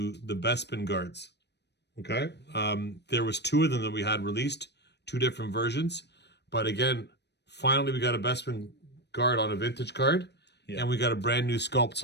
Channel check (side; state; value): right; late; 0.50 ms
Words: the Bespin guards. Okay. There was 2 of them that we had released, 2 different versions. But again, finally we got a Bespin guard on a vintage card. Yeah. And we got a brand new sculpt.